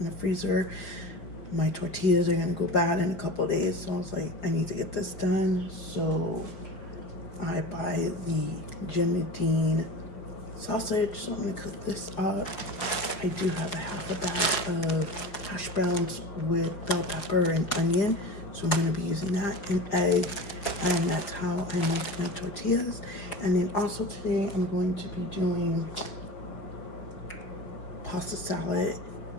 in the freezer. My tortillas are going to go bad in a couple of days. So I was like, I need to get this done. So I buy the Jimmy Dean sausage. So I'm going to cook this up. I do have a half a bag of hash browns with bell pepper and onion. So I'm going to be using that, and egg, and that's how I make my tortillas. And then also today I'm going to be doing pasta salad,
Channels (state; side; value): late; right; 5.1 ms